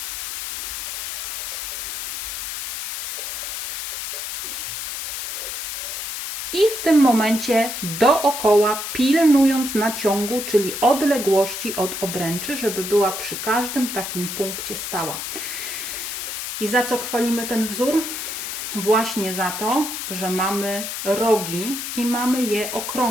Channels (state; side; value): noise; left; hiss, 5 dB below the sound